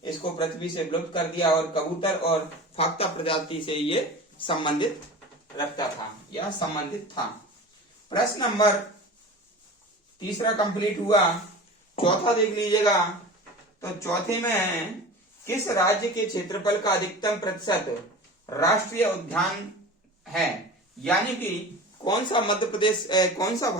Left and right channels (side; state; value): both; normal; correlation 0.35